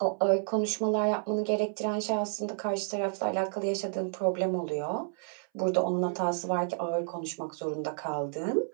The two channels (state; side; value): silent; left; 58 dB below the other